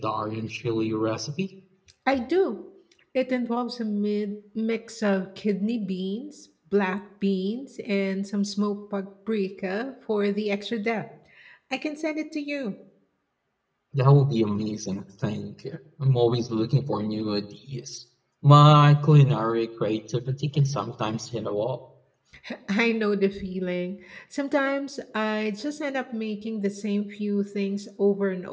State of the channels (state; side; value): identical; both; correlation 1.00